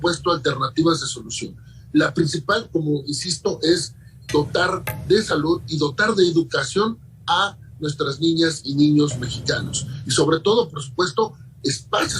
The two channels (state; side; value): identical; both; correlation 1.00